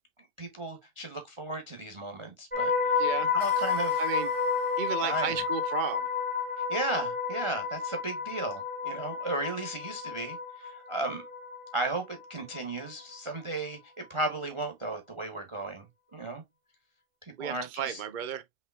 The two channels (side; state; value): left; late; 1.5 ms